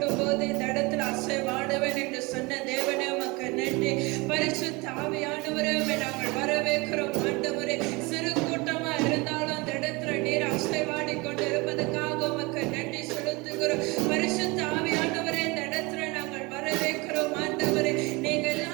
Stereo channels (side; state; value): left; quieter; 25.3 dB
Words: இந்த இடத்துல அசைவாடுவன் என்று சொன்ன தேவனே, உமக்கு நன்றி. பரிசுத்த ஆவியானவரே, நாங்கள் வரவேற்கிறோம். ஆண்டவரே, சிறு கூட்டமா இருந்தாலும் அந்த இடத்துல நீர் அசைவாடி கொண்டு இருப்பதற்காக உமக்கு நன்றி செலுத்துகிறோம். பரிசுத்த ஆவியானவரே, இந்த இடத்துல நாங்கள் வரவேற்கிறோம். ஆண்டவரே, நீங்க